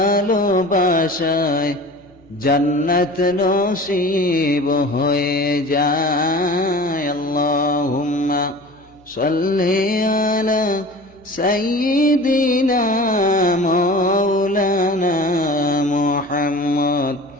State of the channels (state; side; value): noise; left; hum, 30 dB below the sound